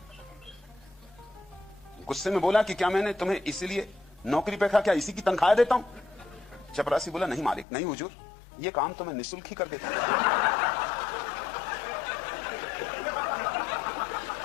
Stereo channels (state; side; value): drops out; right; at 7.7 s